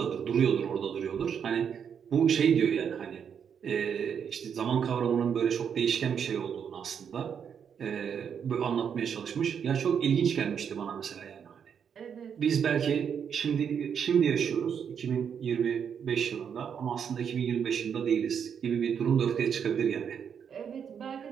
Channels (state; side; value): quieter; left; 7.6 dB